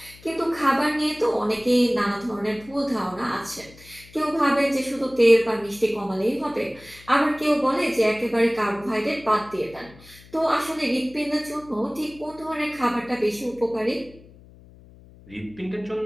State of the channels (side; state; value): left; noise; hum, 23 dB below the sound